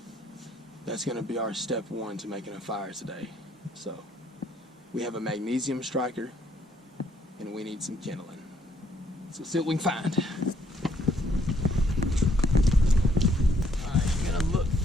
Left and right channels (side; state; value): both; normal; correlation 0.69